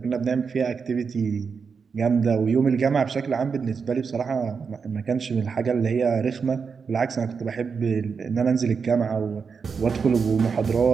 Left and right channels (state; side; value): quieter; left; 5.7 dB